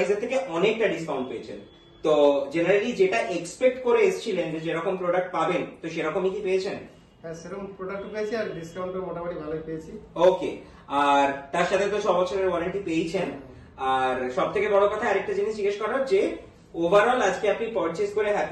থেকে অনেকটা ডিসকাউন্ট পেয়েছেন। তো জেনারেলি যেটা এক্সপেক্ট করে এসেছিলেন যে যেরকম প্রোডাক্ট পাবেন, তো সেরকমই কি পেয়েছেন? হ্যাঁ, সেরকম প্রোডাক্ট পেয়েছি, আর ডিসকাউন্টও মোটামুটি ভালোই পেয়েছি। ওকে, আর তার সাথে তো 6 বছরের ওয়ারেন্টি পেয়েছেন। আর সব থেকে বড় কথা আরেকটা জিনিস জিজ্ঞেস করার, যে ওভারঅল আজকে আপনি পারচেজ করে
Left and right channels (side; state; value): both; identical; correlation 1.00